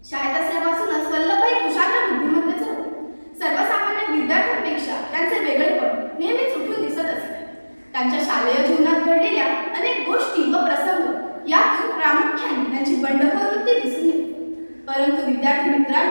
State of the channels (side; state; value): both; inverted; correlation -1.00